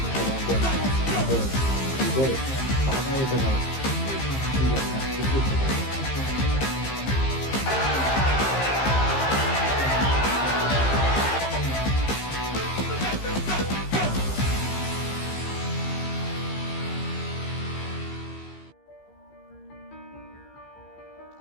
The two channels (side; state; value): right; late; 15 ms